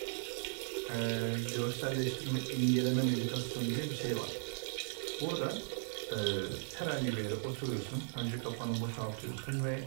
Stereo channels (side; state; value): left; silent; 53 dB below the other